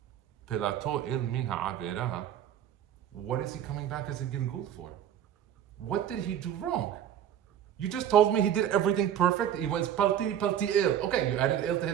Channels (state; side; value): quieter; left; 10.2 dB